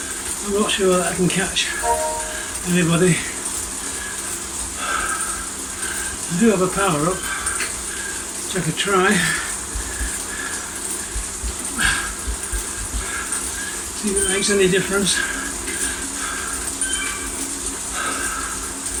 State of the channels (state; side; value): identical; both; correlation 1.00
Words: I'm not sure that I can catch anybody. I do have a power up, which I could try. See if it makes any difference.